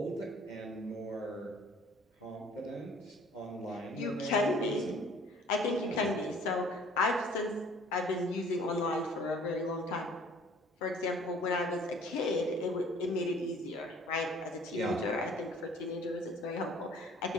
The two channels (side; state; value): both; normal; correlation 0.53